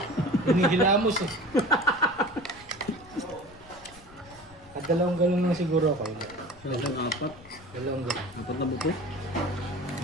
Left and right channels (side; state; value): left; noise; rumble, 23 dB below the sound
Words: Hinihilamos eh. At dalawang galon lang siguro ako. Isang apat. Dalawang galon. Apat na buto.